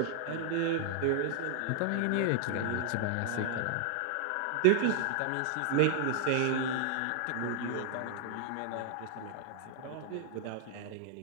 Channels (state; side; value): different; both; correlation 0.00